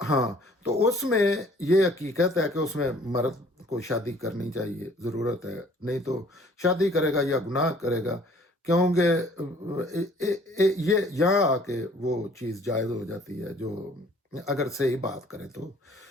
ہاں، تو اس میں یہ حقیقت ہے کہ اس میں مرد کو شادی کرنی چاہیے، ضرورت ہے، نہیں تو شادی کرے گا یا گناہ کرے گا، کیونکہ یہ یہاں آ کے وہ چیز جائز ہو جاتی ہے، جو اگر صحیح بات کریں تو،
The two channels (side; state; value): both; normal; correlation 0.56